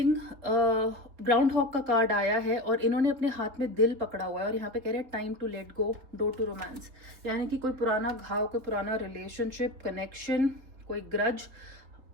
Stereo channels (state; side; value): late; left; 4.0 ms